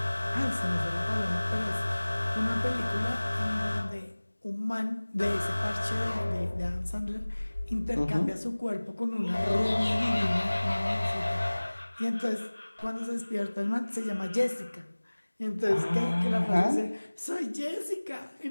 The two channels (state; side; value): inverted; both; correlation -1.00